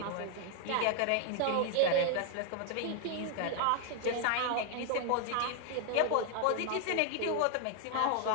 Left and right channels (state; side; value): different; both; correlation 0.00